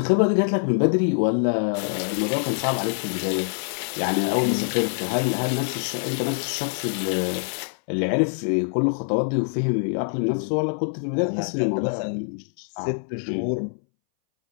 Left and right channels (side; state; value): right; silent; 62 dB below the other